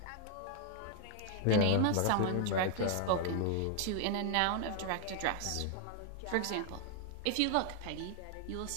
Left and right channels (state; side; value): different; both; correlation 0.00